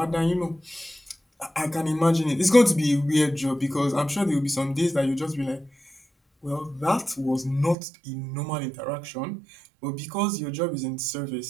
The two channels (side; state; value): left; drops out; at 7.8 s